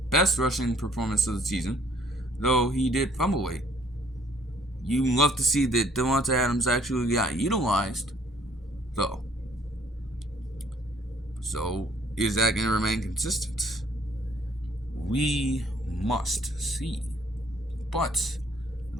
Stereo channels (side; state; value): both; normal; correlation 0.61